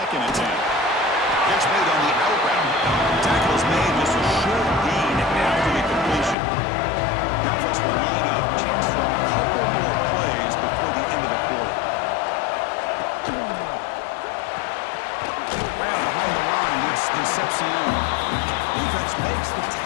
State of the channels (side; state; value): right; drops out; at 6.4 s